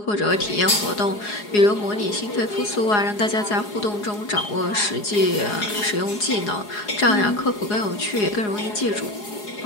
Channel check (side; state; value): right; late; 4.8 ms